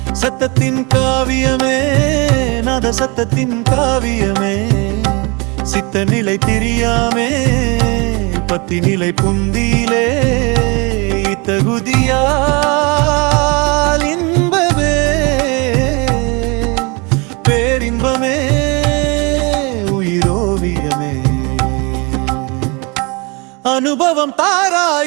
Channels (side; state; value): left; quieter; 28.9 dB